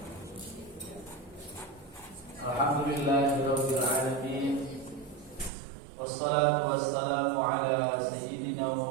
Alhamdulillahirabbil alamin. Wassalatu wassalamu ala sayyidina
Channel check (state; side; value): drops out; left; at 5.5 s